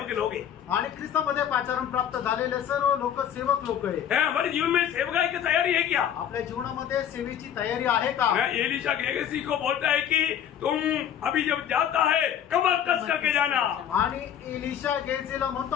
लोग हैं। आणि ख्रिस्तामध्ये पाचारण प्राप्त झालेले सर्व लोक सेवक लोक आहे। है, हमारे जीवन में सेवकाई की तैयारी है क्या? आपल्या जीवनामध्ये सेवेची तयारी आहे का? मैं एलिशा गेहजी को बोलता है कि तुम अभी जब जाता है कमर कस करके जाना। आणि एलिशा गेहजीला म्हणतो,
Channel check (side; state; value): right; quieter; 9.6 dB